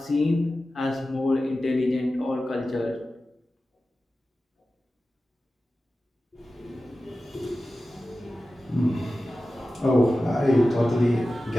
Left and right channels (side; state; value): both; normal; correlation 0.94